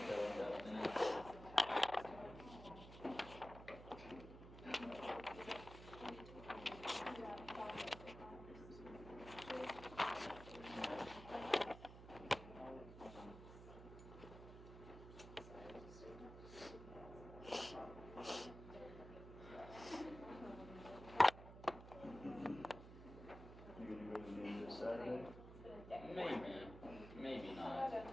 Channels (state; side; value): noise; right; hum, 13 dB below the sound